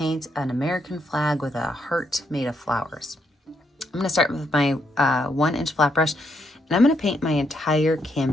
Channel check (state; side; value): normal; both; correlation 0.77